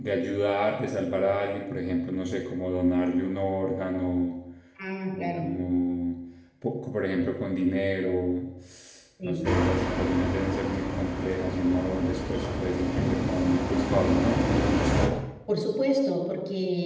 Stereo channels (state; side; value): identical; both; correlation 1.00